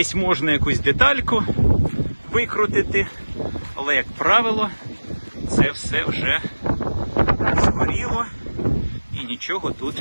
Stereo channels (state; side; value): inverted; both; correlation -1.00